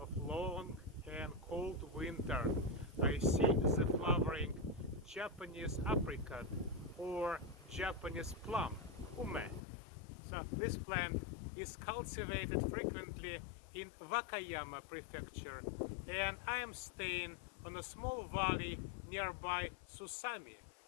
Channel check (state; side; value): drops out; right; at 9.6 s